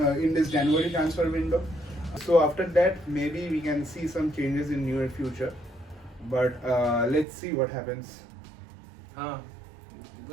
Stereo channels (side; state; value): left; drops out; at 7.2 s